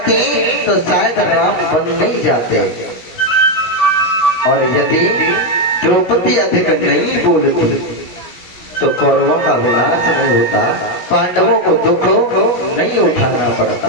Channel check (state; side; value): late; right; 16 ms